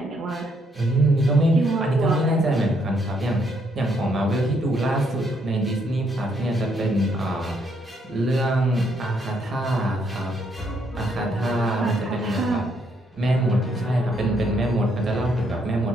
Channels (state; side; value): normal; both; correlation 0.72